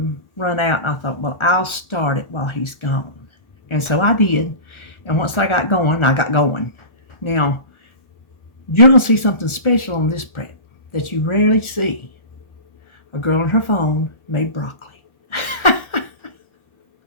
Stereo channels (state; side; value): late; right; 1.4 ms